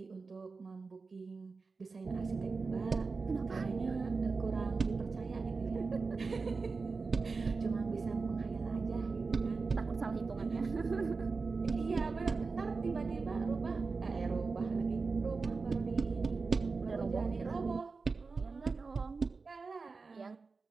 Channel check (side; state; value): left; quieter; 4.3 dB